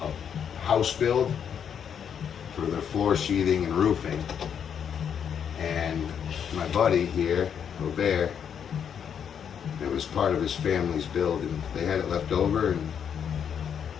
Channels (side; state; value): right; quieter; 8.0 dB